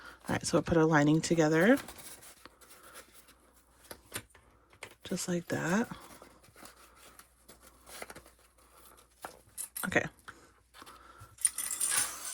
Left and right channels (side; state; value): both; identical; correlation 1.00